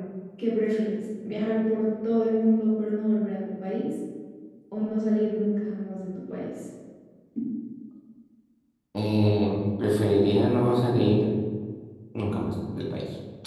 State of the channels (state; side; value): identical; both; correlation 1.00